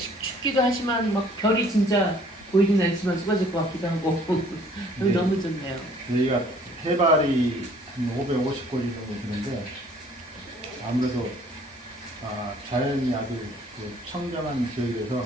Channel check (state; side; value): normal; both; correlation 0.57